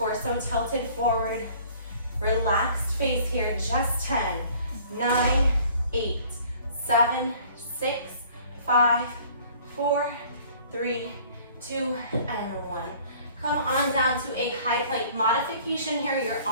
tilted forward. Relaxed face here, just 10, 9, 8, 7, 6, 5, 4, 3, 2, and 1. Come on down to a high plank. Modification here, you're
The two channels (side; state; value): both; inverted; correlation -0.53